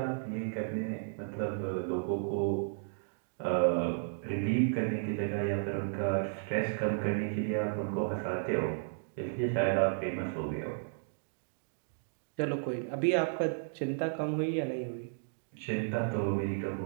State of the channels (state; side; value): silent; left; digital silence